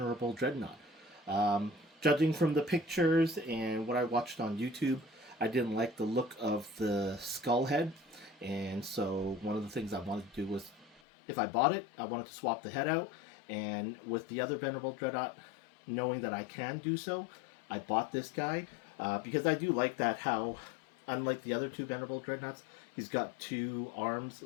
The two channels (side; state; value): right; drops out; at 11.0 s